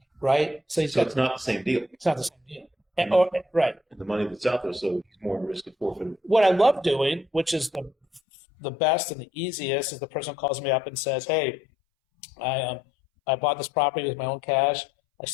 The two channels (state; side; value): drops out; right; at 8.2 s